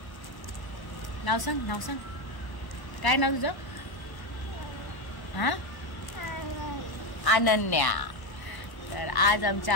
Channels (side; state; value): right; late; 1.1 ms